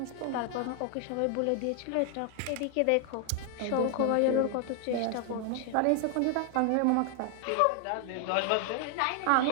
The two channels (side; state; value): both; different; correlation 0.00